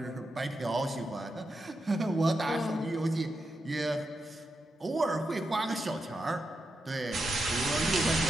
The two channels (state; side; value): normal; both; correlation 0.86